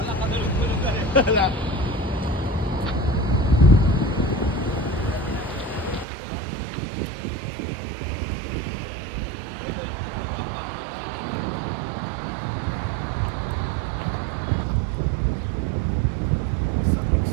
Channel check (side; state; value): left; drops out; at 6.1 s